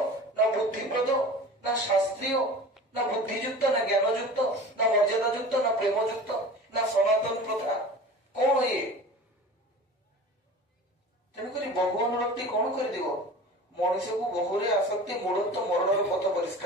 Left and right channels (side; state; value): both; normal; correlation 0.38